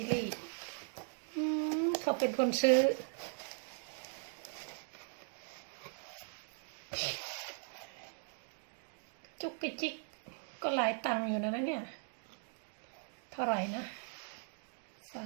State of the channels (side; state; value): left; silent; 52 dB below the other